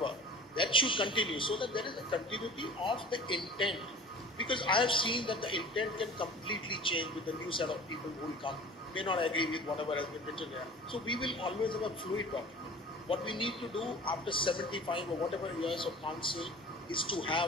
that should continue, so that there is a continuity of the intent. Because I have seen that the intent can completely change with the new set of people who will come, may not agree with whatever has been written here. So we will always have a fluid document. What we need to do after 75 or whatever years of council is to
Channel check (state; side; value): normal; both; correlation 0.41